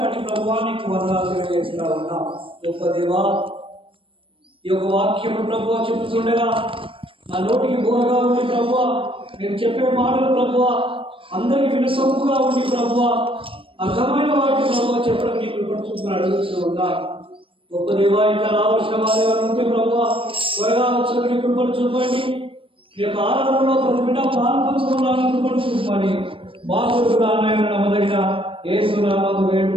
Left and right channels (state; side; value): late; left; 0.25 ms